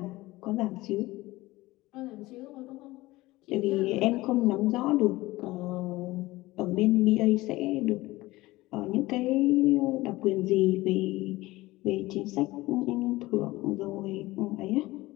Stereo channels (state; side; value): quieter; right; 19.2 dB